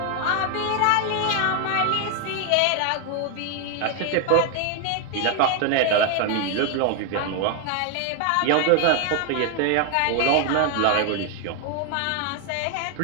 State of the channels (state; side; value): different; both; correlation 0.01